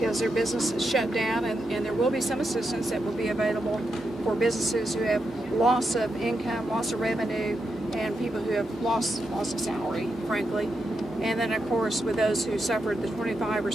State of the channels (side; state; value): both; normal; correlation 0.85